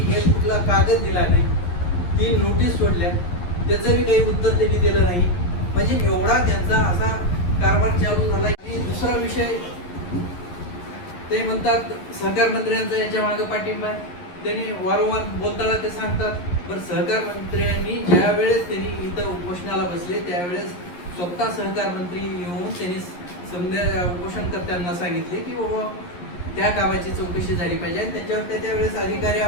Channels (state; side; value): late; right; 11 ms